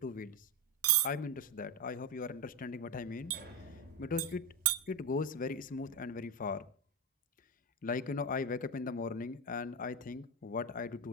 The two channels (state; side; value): normal; both; correlation 0.13